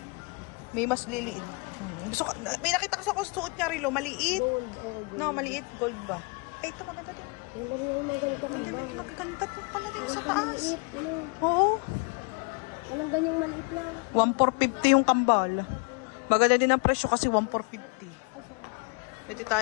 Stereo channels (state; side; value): quieter; right; 31.5 dB